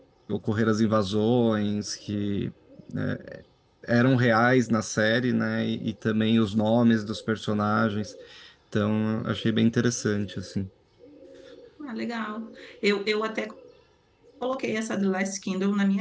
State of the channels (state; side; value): identical; both; correlation 1.00